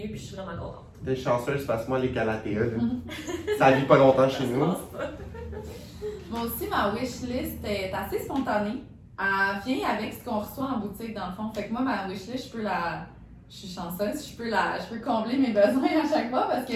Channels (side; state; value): both; identical; correlation 1.00